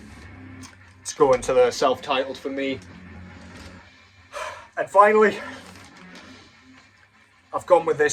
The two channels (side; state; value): both; identical; correlation 1.00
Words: let's go into the self-titled for me. And finally, I've gone with